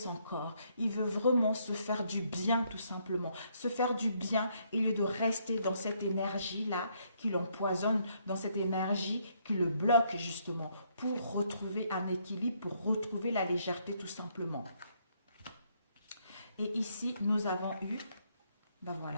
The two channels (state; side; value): inverted; both; correlation -0.71